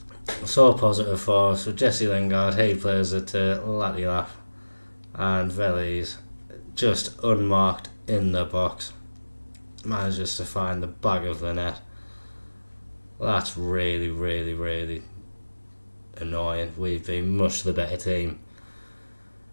So positive for us. So Jesse Lingard, he plays it to Latilaf, and Veliz just unmarked in the box manages to find the back of the net. That's really, really, really annoying. We've been much the better team,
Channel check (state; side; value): inverted; both; correlation -1.00